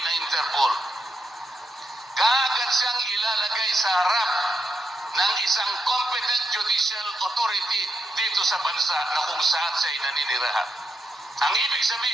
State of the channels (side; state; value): both; normal; correlation 0.83